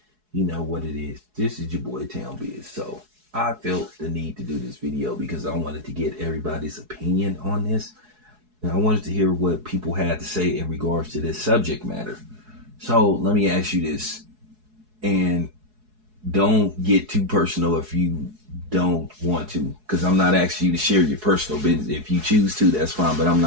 You know what it is. This is your boy Town Biz. So I felt the need to do this video because I wanted to get everybody's opinion on this. And I wanted to hear what people had to say in regards to this subject matter. So let me ask you this. And don't get too personal if you don't want to, because I'm not asking you to share your personal business. If you choose to, that's fine, but I'm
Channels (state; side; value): late; left; 4.7 ms